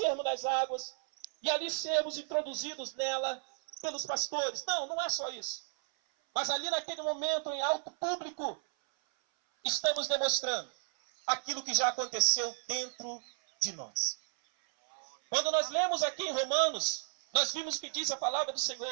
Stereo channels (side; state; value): left; silent; 56 dB below the other